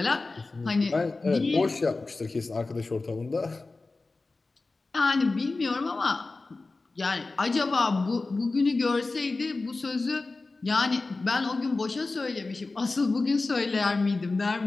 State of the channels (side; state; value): right; quieter; 3.5 dB